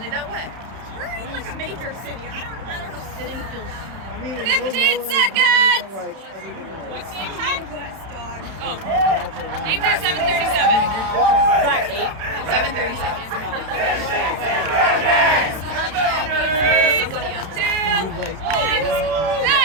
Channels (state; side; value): late; left; 31 ms